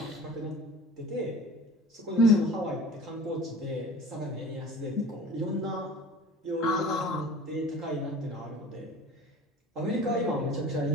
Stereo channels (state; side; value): normal; both; correlation 0.41